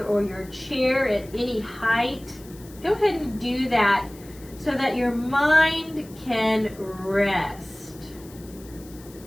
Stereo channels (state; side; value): noise; left; hiss, 22 dB below the sound